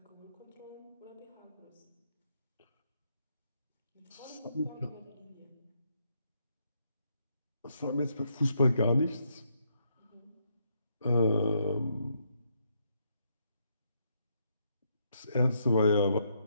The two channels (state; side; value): inverted; both; correlation -0.76